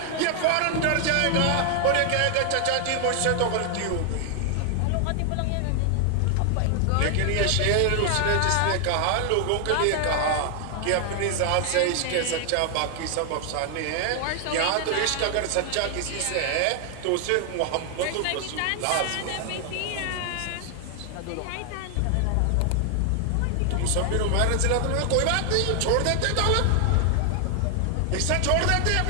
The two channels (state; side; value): different; both; correlation 0.00